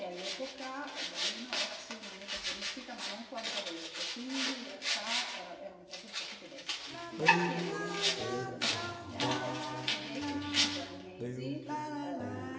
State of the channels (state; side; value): identical; both; correlation 1.00